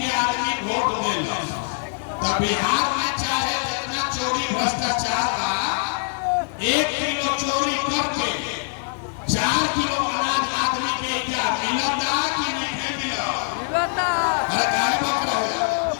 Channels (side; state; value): right; silent; 63 dB below the other